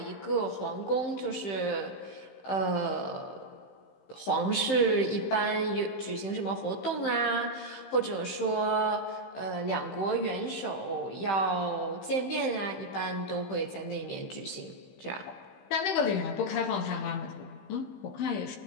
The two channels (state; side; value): late; right; 15 ms